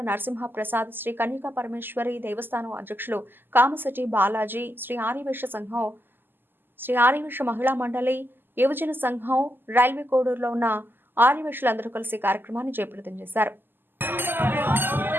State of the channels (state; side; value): late; left; 0.095 ms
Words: నరసింహ ప్రసాద్, శ్రీ కన్యకా పరమేశ్వరి దేవస్థానం అధ్యక్షులు కామశెట్టి బాలాజీ, శ్రీ ఆర్యవైశ్య సంఘం, శ్రీ ఆర్యవైశ్య మహిళా మండలి, యువజన సంఘం, రైల్వే కోడూరులో ఉన్న ఆర్యవైశ్యులందరూ కలిసి కార్యక్రమాన్ని జయప్రదం చేశారు.